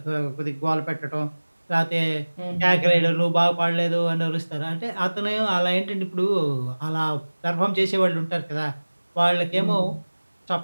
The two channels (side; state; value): both; inverted; correlation -1.00